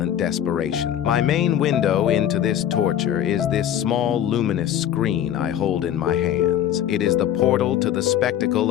desperation. My main window into this torture is this small luminous screen I hold in my hands. It is the portal to the spectacle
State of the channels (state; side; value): quieter; right; 10.6 dB